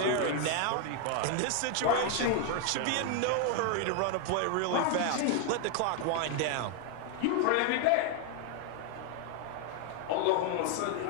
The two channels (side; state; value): both; different; correlation 0.00